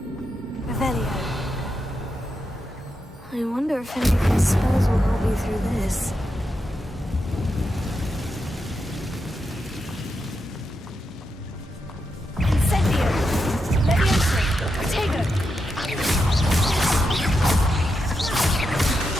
Revelio. I wonder if any of these spells will help me through this. Incendio! Levioso! Protego!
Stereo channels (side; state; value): both; normal; correlation 0.86